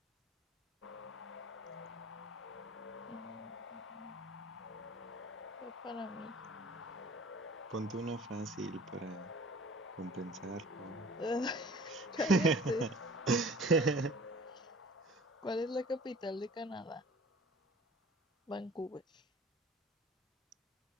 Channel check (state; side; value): normal; both; correlation 0.47